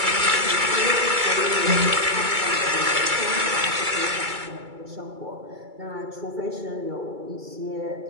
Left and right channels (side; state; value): left; late; 2.3 ms